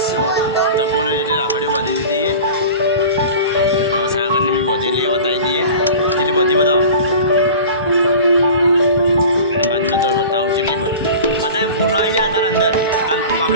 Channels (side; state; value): both; inverted; correlation -0.38